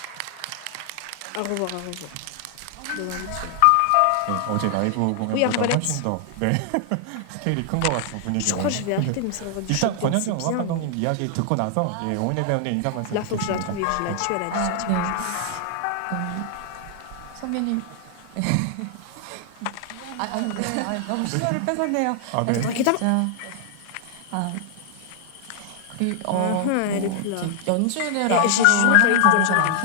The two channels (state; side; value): different; both; correlation 0.00